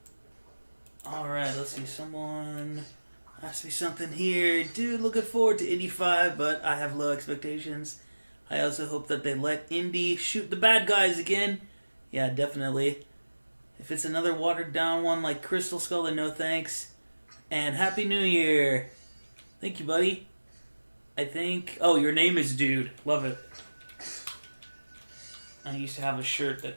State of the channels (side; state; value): both; inverted; correlation -1.00